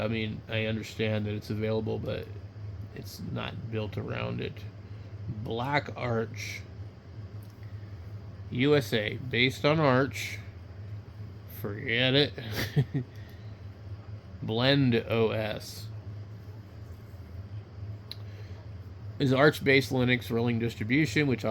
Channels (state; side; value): identical; both; correlation 1.00